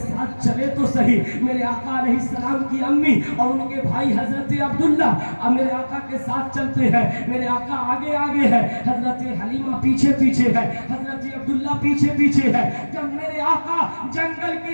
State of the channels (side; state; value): both; inverted; correlation -1.00